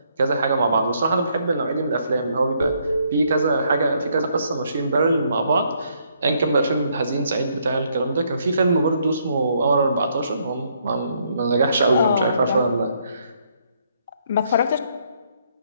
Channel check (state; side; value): inverted; both; correlation -0.71